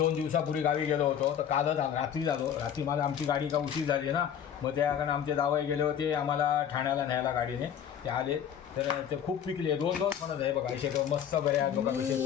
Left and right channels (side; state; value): right; quieter; 8.9 dB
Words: दिवसापूर्वी गावी गेलो होतो. तर कालच रात्री झालो. रात्री मला आमची गाडी का उशीर झाली ना. मग त्या कारण आमचे जावई गेले होते आम्हाला ठाण्याला न्यायला गाडीने. ते आले तर ते खूप पिकले. 2 फणस आहे बघा. असे मस्त घरे आहेत बघा.